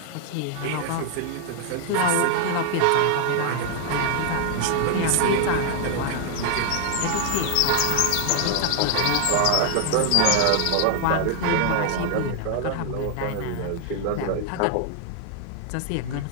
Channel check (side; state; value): both; different; correlation 0.00